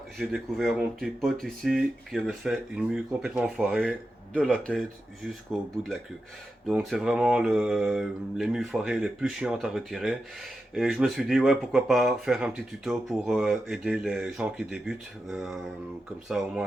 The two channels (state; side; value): normal; both; correlation 0.90